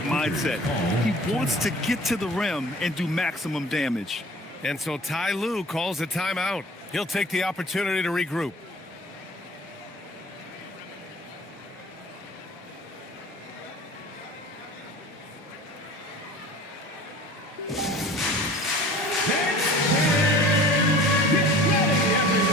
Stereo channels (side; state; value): both; normal; correlation 0.45